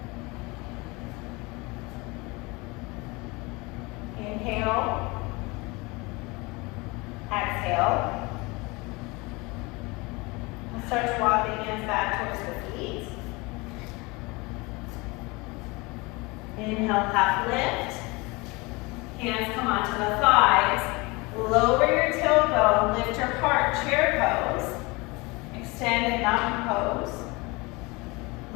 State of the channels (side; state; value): right; quieter; 25.2 dB